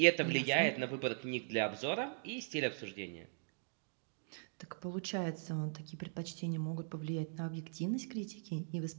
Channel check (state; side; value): silent; left; digital silence